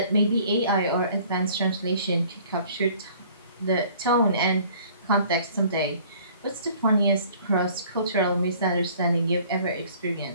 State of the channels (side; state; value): both; inverted; correlation -0.53